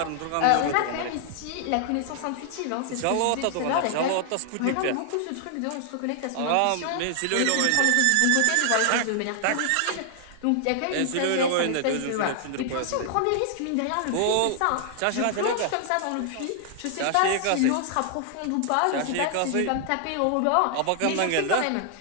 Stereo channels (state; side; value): different; both; correlation 0.00